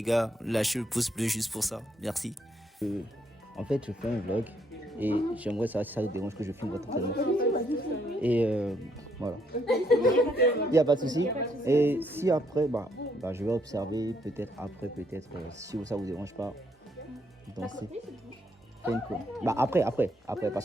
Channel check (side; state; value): both; normal; correlation 0.72